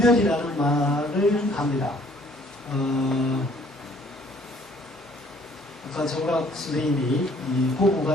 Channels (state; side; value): normal; both; correlation 0.59